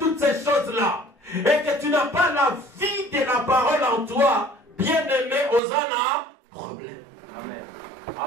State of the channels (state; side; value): drops out; left; at 5.6 s